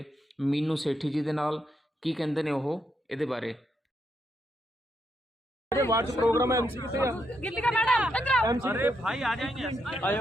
ਮੀਨੂ ਸੇਠੀ ਜੀ ਦੇ ਨਾਲ, ਕੀ ਕਹਿੰਦੇ ਨੇ ਉਹ ਇਹਦੇ ਬਾਰੇ। वार्ड प्रोग्राम है एमसी कितने गिल्ली का मैडम एमसी अरे भाई आ जाएंगे आयो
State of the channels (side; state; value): both; normal; correlation 0.80